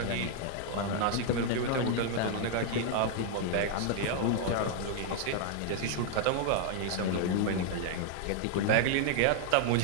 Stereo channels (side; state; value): both; different; correlation 0.00